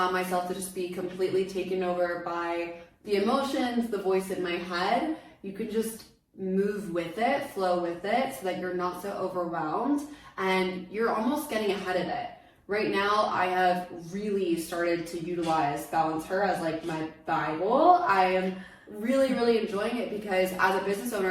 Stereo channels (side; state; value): both; identical; correlation 1.00